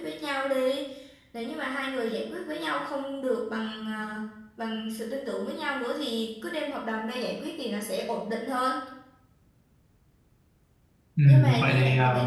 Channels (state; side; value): identical; both; correlation 1.00